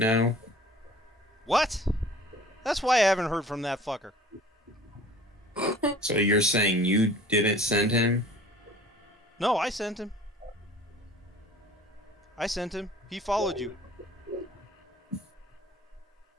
What? That's why I haven't heard from that fucker. So you're saying you didn't send him? No, I sent him. He followed you.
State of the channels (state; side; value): normal; both; correlation 0.48